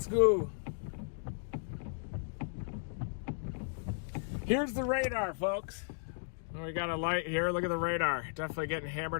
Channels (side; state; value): right; silent; digital silence